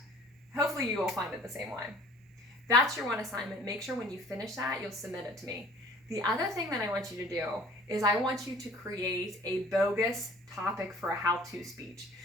Hopefully you will find it the same way. That's your one assignment. Make sure when you finish that, you'll submit it to me. The other thing that I want you to do is I want you to create a bogus topic for a how-to speech.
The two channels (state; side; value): normal; both; correlation 0.51